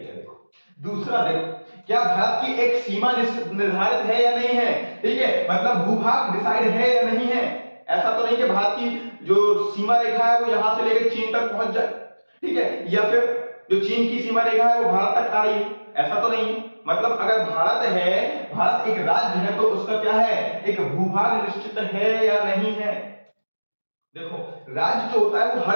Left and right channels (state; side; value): inverted; both; correlation -1.00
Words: देखो दूसरा, देखो क्या भारत की एक सीमा निर्धारित है या नहीं है? ठीक है, मतलब भूभाग डिसाइड है या नहीं है? ऐसा तो नहीं कि भारत की जो सीमा रेखा है वो यहां से लेकर चीन तक पहुंच जाए, ठीक है, या फिर जो चीन की सीमा रेखा है वो भारत तक आ रही है, ऐसा तो नहीं। मतलब अगर भारत है, भारत एक राज्य है, तो उसका क्या है, एक भूभाग निश्चित है या नहीं है? देखो राज्य जो होता है वो